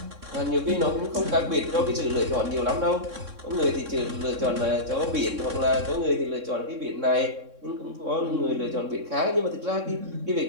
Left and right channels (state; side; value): late; left; 3.6 ms